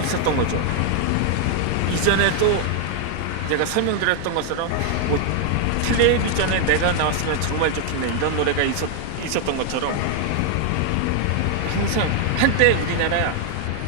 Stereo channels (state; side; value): different; both; correlation 0.00